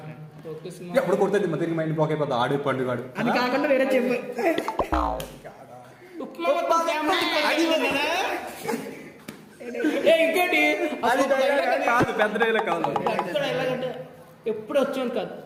పోకిరి సినిమా ఎప్పుడు కొడుతుంది తిరిగి మైండ్ బ్లాక్ అయిపోతుంది. ఆడు పండుగ అది కాకుండా వేరే చెప్పు. ఇంకోటి పెద్ద డైలాగ్ కాదు. ఎప్పుడు వచ్చాను కాదు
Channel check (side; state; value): both; identical; correlation 1.00